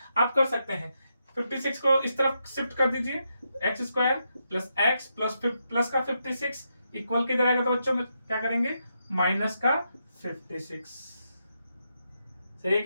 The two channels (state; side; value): inverted; both; correlation -0.83